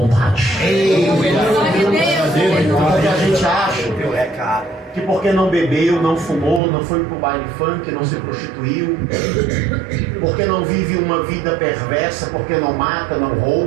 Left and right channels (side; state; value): left; drops out; at 6.6 s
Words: Porque a gente acha que porque não bebeu, não fumou, não foi pro baile funk, não se prostituiu, porque não vive uma vida perversa, porque não mata, não